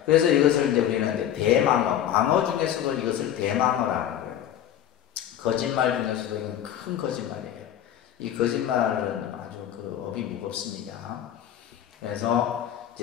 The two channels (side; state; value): right; quieter; 10.7 dB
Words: 그래서 이것을 이제 우리는 대망어, 망어 중에서도 이것을 대망어라는 거예요. 거짓말 중에서도 이건 큰 거짓말이에요. 이 거짓말은 아주 그 업이 무겁습니다. 그래서